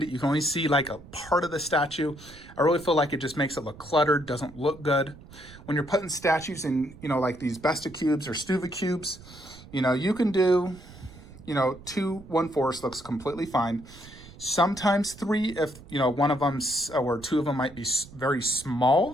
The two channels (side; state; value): right; noise; rumble, 19 dB below the sound